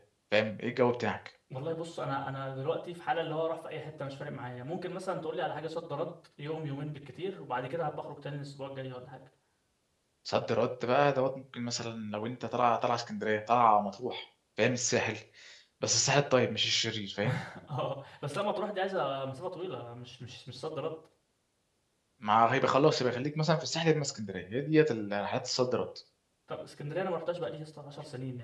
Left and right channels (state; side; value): identical; both; correlation 1.00